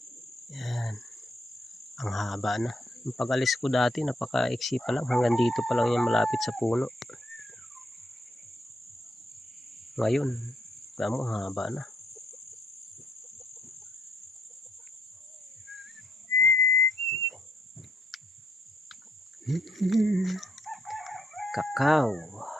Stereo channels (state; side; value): normal; both; correlation 0.73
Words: Ayan. Ang haba na. Yung pag-alis ko dati, napaka-iksi pa lang. Hanggang dito pa lang yan malapit sa puno. Ngayon, tamo, haba na. Kakao.